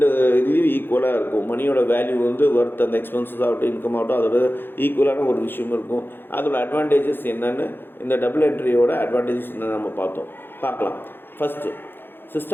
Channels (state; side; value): late; right; 0.10 ms